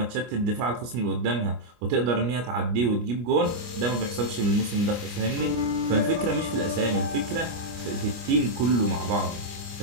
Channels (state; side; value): late; left; 25 ms